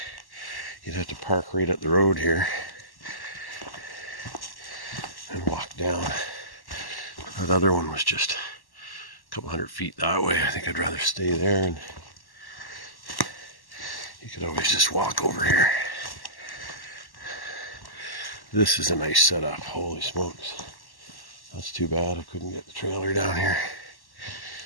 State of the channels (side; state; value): right; late; 1.1 ms